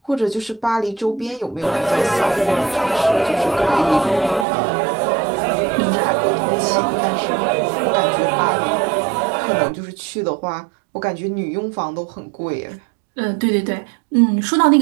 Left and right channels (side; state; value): left; drops out; at 4.5 s